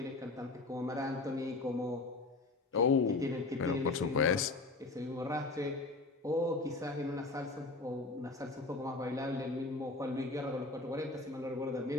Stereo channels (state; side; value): quieter; right; 3.4 dB